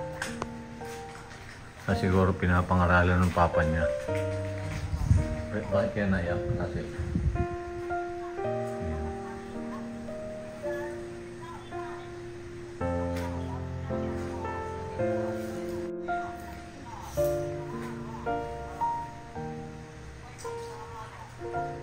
Siguro pinapangaralan ng papa niya. Bakit kaya naiyak? Kasi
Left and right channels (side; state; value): both; identical; correlation 1.00